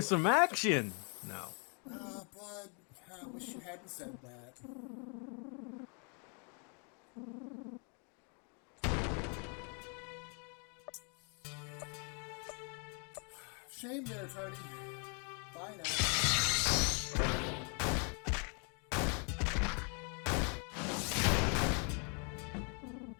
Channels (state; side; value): quieter; right; 37.6 dB